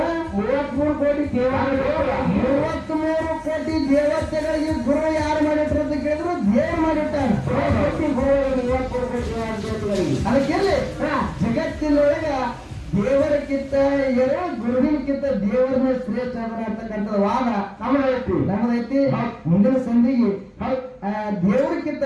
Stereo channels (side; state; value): both; identical; correlation 1.00